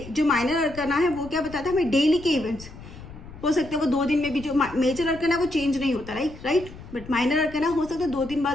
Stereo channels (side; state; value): left; noise; rumble, 16 dB below the sound